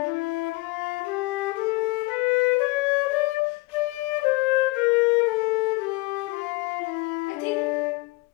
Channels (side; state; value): right; quieter; 23.4 dB